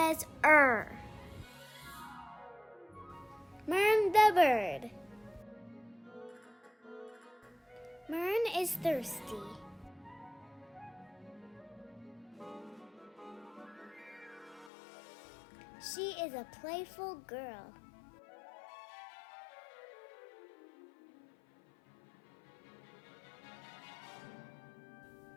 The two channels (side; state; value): right; drops out; at 14.7 s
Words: Mirn the Bird. Mirn is thirsty. She is a playful girl.